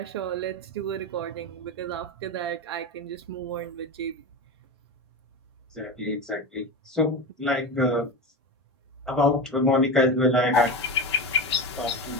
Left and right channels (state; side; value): normal; both; correlation 0.22